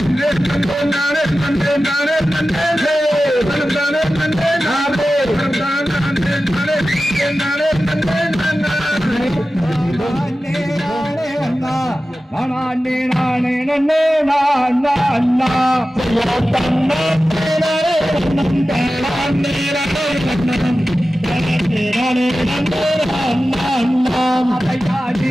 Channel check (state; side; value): normal; both; correlation 0.94